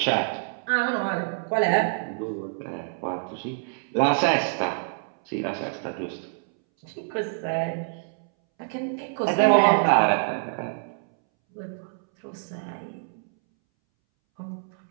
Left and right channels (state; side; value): silent; left; 61 dB below the other